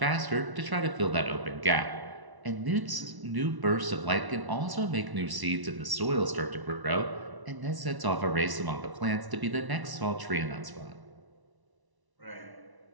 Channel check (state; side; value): late; left; 1.1 ms